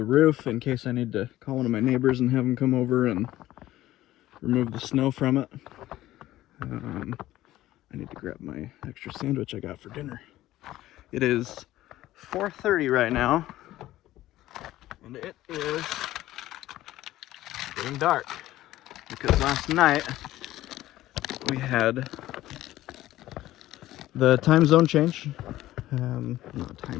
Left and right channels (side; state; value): right; quieter; 15.1 dB